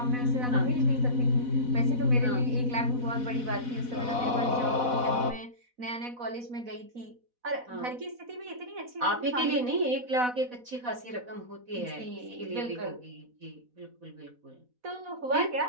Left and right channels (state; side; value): late; left; 4.1 ms